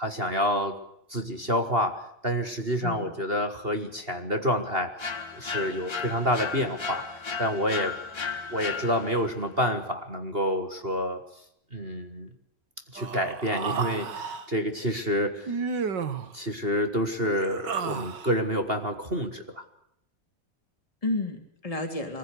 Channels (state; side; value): late; left; 2.8 ms